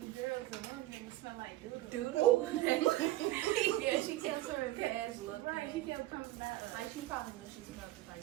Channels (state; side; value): quieter; left; 16.3 dB